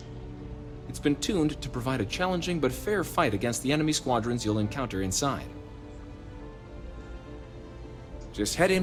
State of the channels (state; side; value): identical; both; correlation 1.00